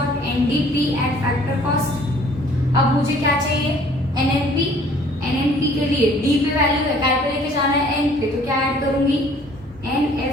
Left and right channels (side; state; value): both; normal; correlation 0.56